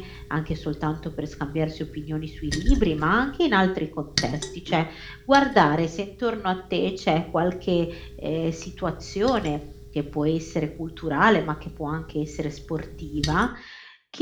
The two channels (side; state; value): both; identical; correlation 1.00